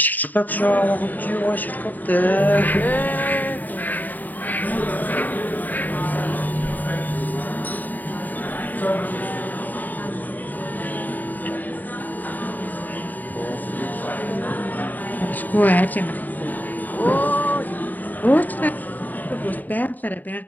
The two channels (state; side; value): late; right; 0.085 ms